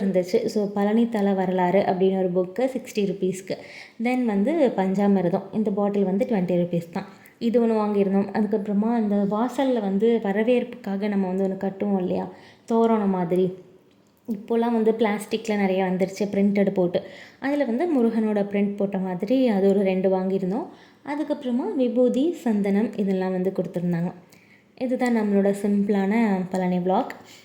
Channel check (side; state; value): both; identical; correlation 1.00